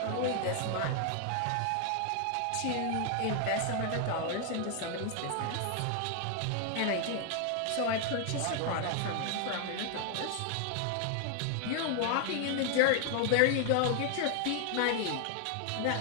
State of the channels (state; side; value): different; both; correlation 0.00